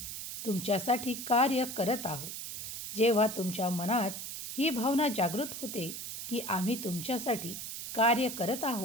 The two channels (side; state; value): right; noise; hiss, 7 dB below the sound